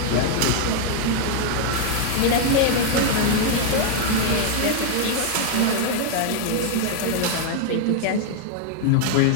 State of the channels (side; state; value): both; different; correlation 0.00